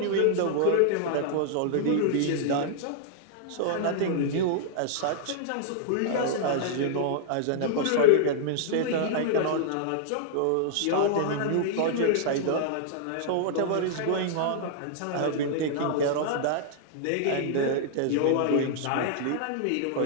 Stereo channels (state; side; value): different; both; correlation -0.01